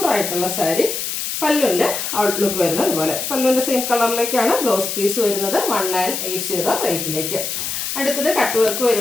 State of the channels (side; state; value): left; noise; hiss, 3 dB below the sound